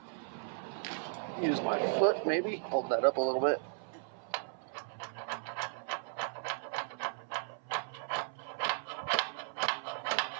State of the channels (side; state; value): left; silent; 54 dB below the other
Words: Use my foot maybe, hold that up a little bit.